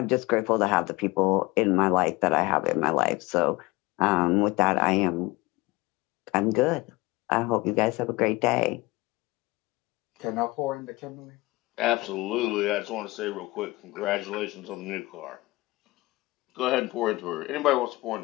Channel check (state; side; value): quieter; right; 21.6 dB